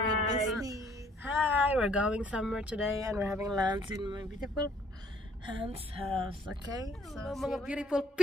with Disney. Hi, we're going somewhere today and we're having lunch in my beautiful aunt's house. Okay, so mga beautiful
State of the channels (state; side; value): normal; both; correlation 0.61